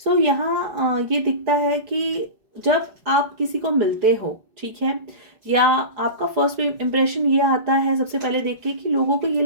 यहाँ ये दिखता है कि जब आप किसी को मिलते हो, ठीक है, या आपका फर्स्ट इम्प्रेशन ये आता है सबसे पहले देख के कि लोगों को ये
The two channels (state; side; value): late; left; 4.9 ms